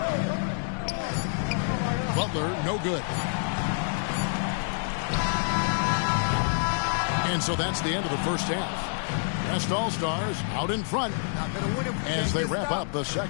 Butler, no good. And so that's the end of the first half. West All-Stars out in front as they wrap up the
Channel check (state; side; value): silent; right; 60 dB below the other